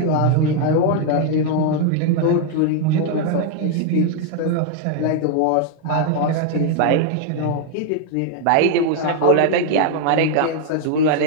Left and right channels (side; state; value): both; different; correlation 0.00